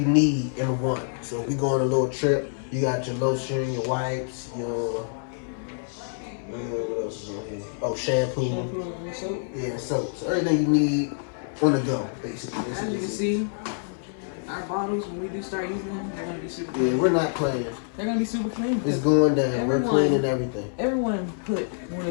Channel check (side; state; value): right; silent; 61 dB below the other